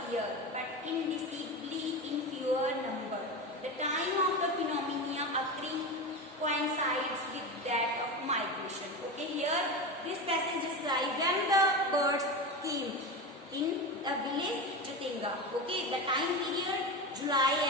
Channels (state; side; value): normal; both; correlation 0.22